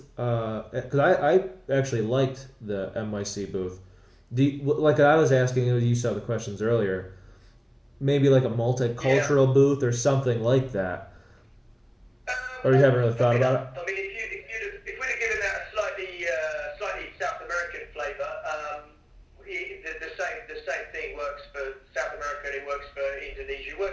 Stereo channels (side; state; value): both; identical; correlation 1.00